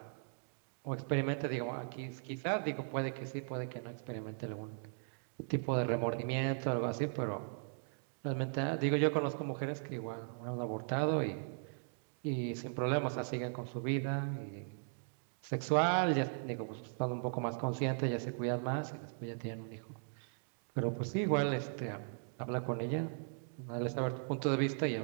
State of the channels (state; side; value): silent; left; digital silence